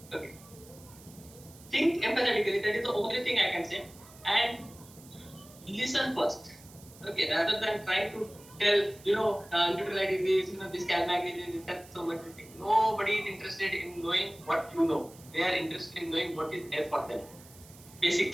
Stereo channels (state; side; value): noise; right; hiss, 22 dB below the sound